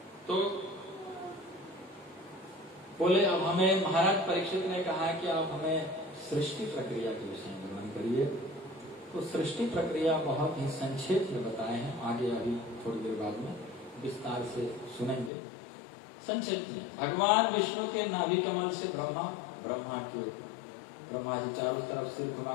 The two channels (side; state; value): right; drops out; at 15.3 s